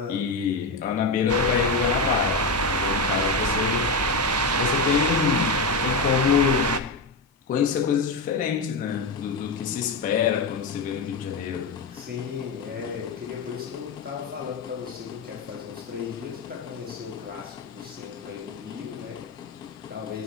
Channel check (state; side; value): quieter; right; 3.2 dB